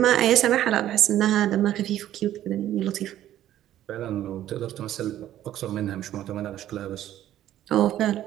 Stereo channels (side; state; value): left; quieter; 12.5 dB